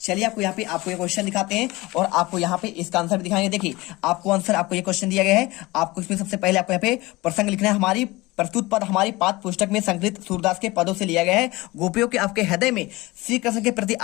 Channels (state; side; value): quieter; right; 21.2 dB